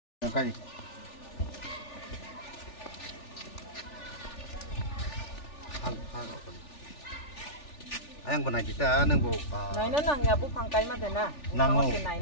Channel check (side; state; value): right; late; 3.4 ms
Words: Ayang benai kita neng bu. Nai na nang ya bu pangkai mah dena. Nang mau.